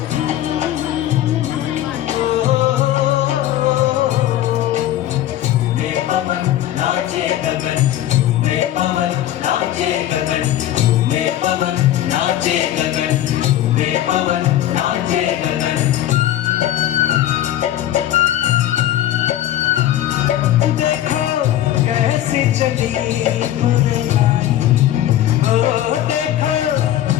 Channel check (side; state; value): right; quieter; 12.7 dB